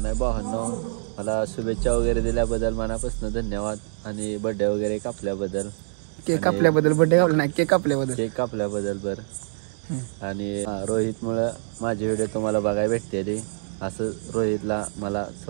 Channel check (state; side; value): silent; left; digital silence